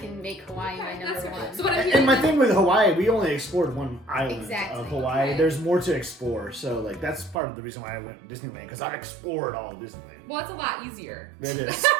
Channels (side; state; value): left; drops out; at 7.4 s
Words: make Hawaii my Okay, number that's fair. one. So what I'm hearing And my is- thing with Hawaii, we only explored one island Exactly. of Hawaii. Okay. There's more to explore, so like that's part of the reason why I went to Disneyland, because I explored all of Disneyland. well, it's a lot easier. It is.